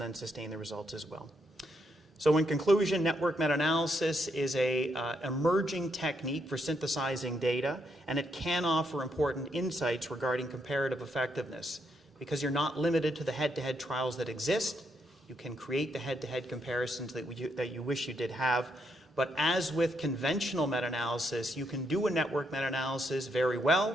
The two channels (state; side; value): normal; both; correlation 0.78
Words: then sustain the results as well. So in conclusion, network meta-analysis is an emerging technique for synthesizing data, and it can offer important insights regarding comparative effectiveness. Because you're not limited to the head-to-head trials that exist, you can create the head-to-head comparisons that you wish you did have. But as with conventional meta-analysis, you can do a network meta-analysis very well